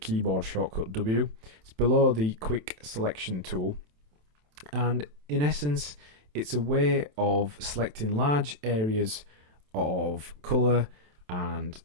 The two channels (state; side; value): late; left; 27 ms